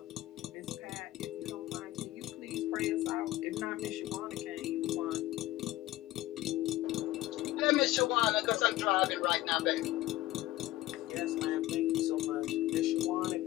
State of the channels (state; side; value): quieter; right; 16.2 dB